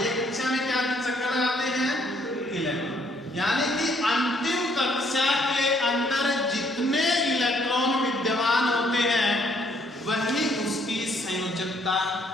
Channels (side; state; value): both; normal; correlation 0.67